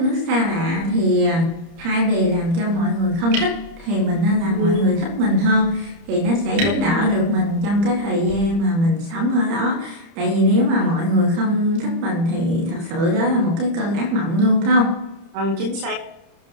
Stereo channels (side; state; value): left; late; 30 ms